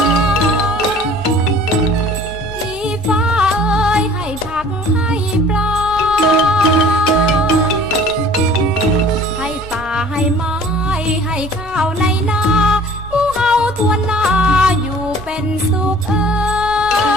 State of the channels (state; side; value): normal; both; correlation 0.49